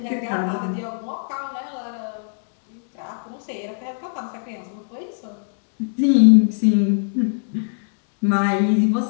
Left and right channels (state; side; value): silent; right; digital silence